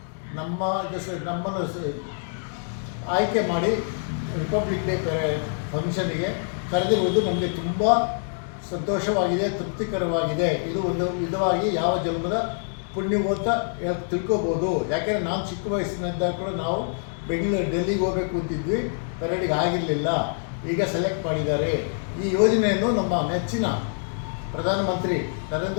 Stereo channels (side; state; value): right; silent; digital silence